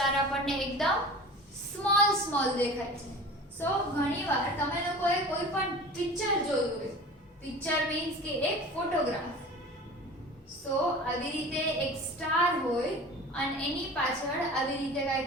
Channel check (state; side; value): normal; both; correlation 0.38